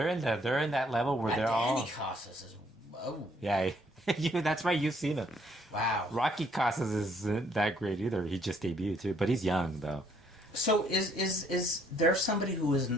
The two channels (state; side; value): normal; both; correlation 0.66